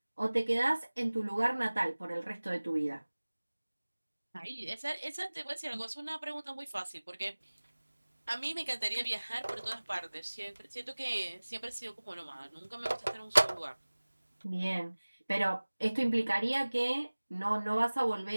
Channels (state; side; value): inverted; both; correlation -1.00